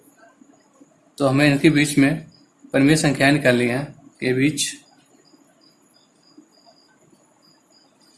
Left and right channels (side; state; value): both; identical; correlation 1.00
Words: तो हमें इनके बीच में परिमेय संख्याएं निकालनी है। के बीच